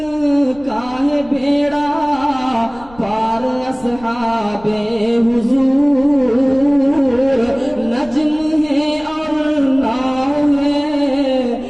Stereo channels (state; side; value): noise; left; rumble, 22 dB below the sound